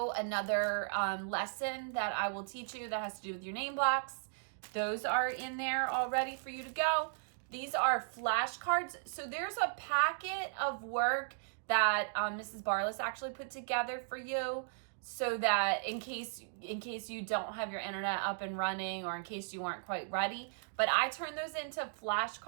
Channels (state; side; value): silent; left; digital silence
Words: another lesson that I will teach you that has to do with your name blocks. Those are in there all ready for you to go. These are flashcards. So there's a packet of work that Mrs. Barless actually put together for you, so that in case you don't have your internet up and running, or in case you weren't quite ready. But I turn those into